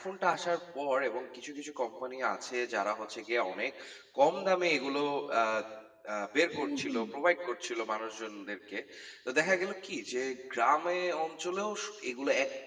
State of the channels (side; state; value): both; identical; correlation 1.00